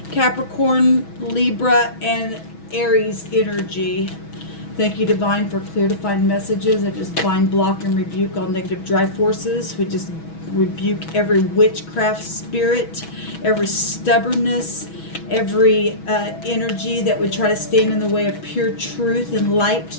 Capricorn, Libra, and Aries energy. Thank you, Divine, for clear defined messages. I just bind, block, and rebuke all negative drive forces. We just rebuke every witchcraft spirit, every stubbornness, every energy that would try to stand in the way of pure truth and light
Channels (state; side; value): late; right; 6.2 ms